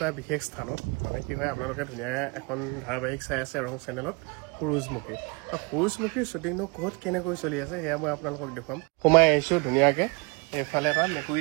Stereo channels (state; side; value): quieter; left; 29.3 dB